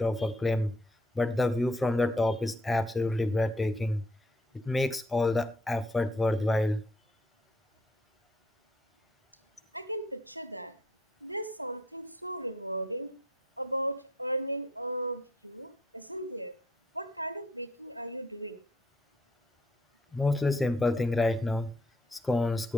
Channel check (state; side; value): normal; both; correlation 0.68